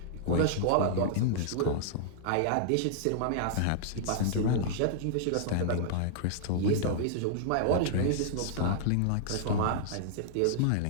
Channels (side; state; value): both; different; correlation -0.01